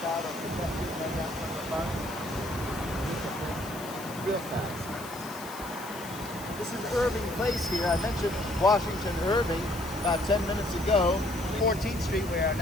out or projecting right down from the bus. Real fast. This is Irving Place here. I mentioned Washington Irving about 10 minutes ago. 14th Street we are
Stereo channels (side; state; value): left; noise; hiss, 15 dB below the sound